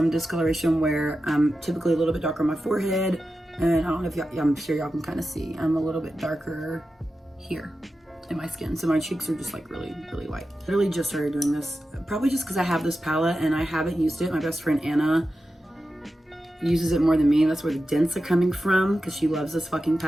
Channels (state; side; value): normal; both; correlation 0.92